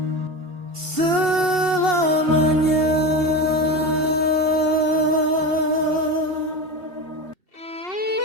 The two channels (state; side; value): late; left; 2.7 ms